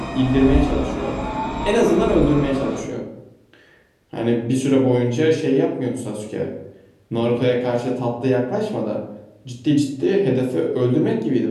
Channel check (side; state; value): both; identical; correlation 1.00